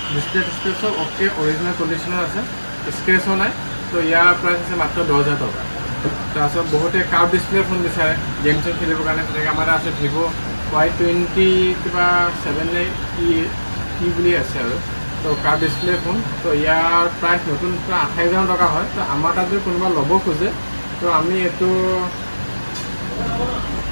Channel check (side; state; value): both; inverted; correlation -1.00